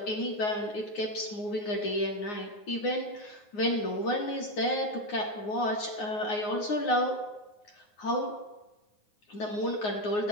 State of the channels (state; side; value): late; right; 9.6 ms